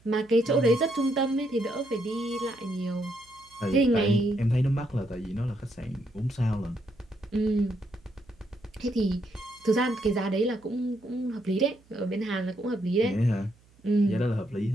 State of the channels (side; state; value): right; noise; hum, 30 dB below the sound